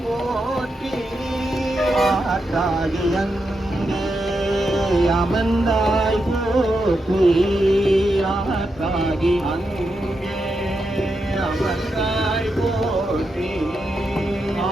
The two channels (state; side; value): normal; both; correlation 0.85